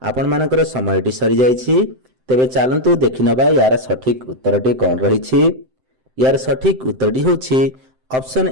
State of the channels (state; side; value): late; left; 7.7 ms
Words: ଆପଣମାନଙ୍କର ସମୟଟି ସରିଯାଇଛି। ତେବେ ଚାଲନ୍ତୁ ଦେଖିନେବା ଏହାର ସଠିକ୍ ଉତ୍ତରଟି କ'ଣ ରହିଛି। ଏହାର ସଠିକ୍ ଉତ୍ତରଟି ହେଉଛି ଅପସନ୍